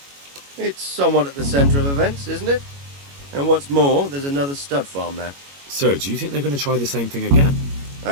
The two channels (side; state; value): left; late; 21 ms